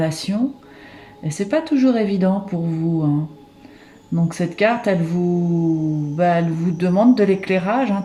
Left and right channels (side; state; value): both; identical; correlation 1.00